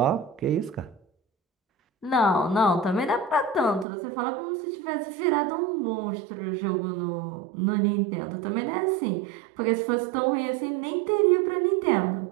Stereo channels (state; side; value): drops out; left; at 3.9 s